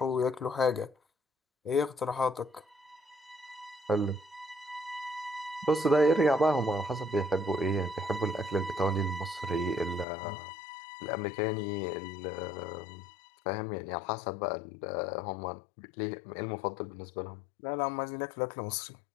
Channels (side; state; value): right; drops out; at 10.1 s